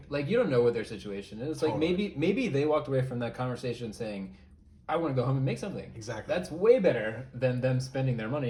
like, you don't know what their situation is. Like, maybe they walked away from that conversation saying, I want to go home and make something. Exactly. That's way better than them spending their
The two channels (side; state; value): both; identical; correlation 1.00